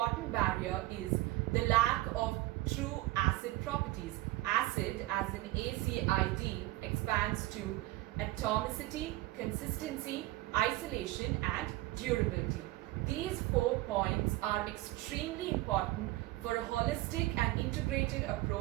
barrier is the lack of true ACID properties. ACID, as in ACID, expands to atomicity, consistency, isolation, and durability. These 4 points are extremely important for a holistic and integrated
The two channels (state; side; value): quieter; left; 18.0 dB